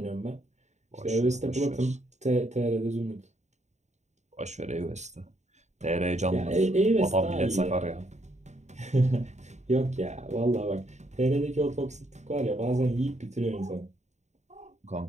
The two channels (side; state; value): left; late; 0.34 ms